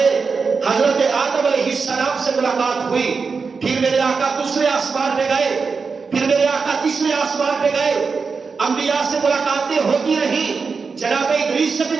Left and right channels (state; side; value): quieter; left; 5.0 dB